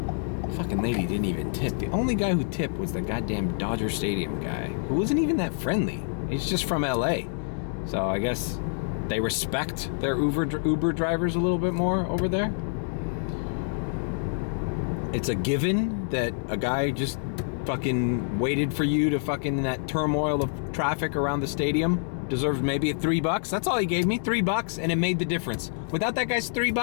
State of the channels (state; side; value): silent; right; digital silence